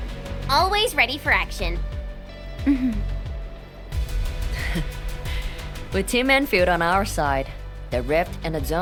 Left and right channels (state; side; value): identical; both; correlation 1.00